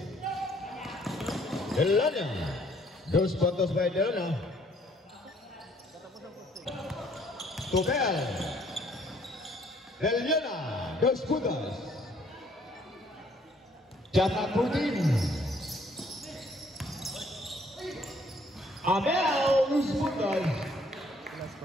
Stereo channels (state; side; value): normal; both; correlation 0.63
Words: Delania. 2 puntos by Delania. Tobel. Delania. 2 puntos. Jatah Putin. Abel 2 puntos.